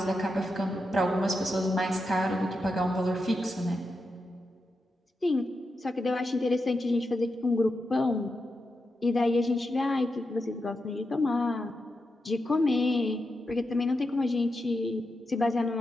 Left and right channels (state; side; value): normal; both; correlation 0.87